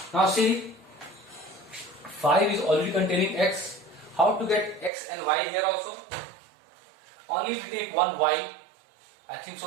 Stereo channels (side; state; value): left; drops out; at 4.9 s